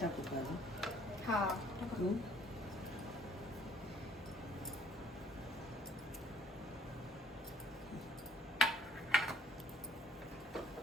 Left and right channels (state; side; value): normal; both; correlation 0.61